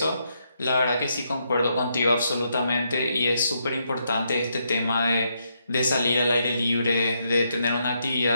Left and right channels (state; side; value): inverted; both; correlation -0.78